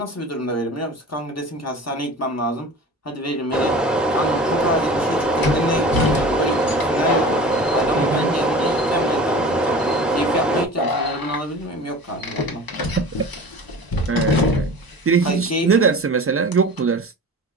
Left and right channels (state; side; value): normal; both; correlation 0.38